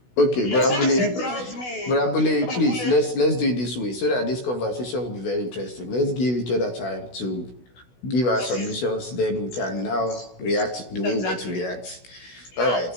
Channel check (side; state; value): right; late; 16 ms